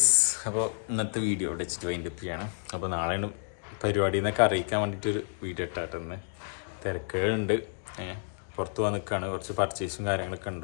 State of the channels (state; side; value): silent; right; digital silence